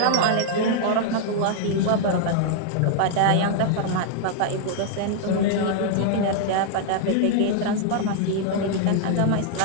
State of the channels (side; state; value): both; different; correlation -0.01